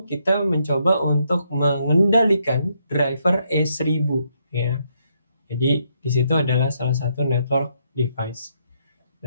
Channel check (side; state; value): both; inverted; correlation -0.75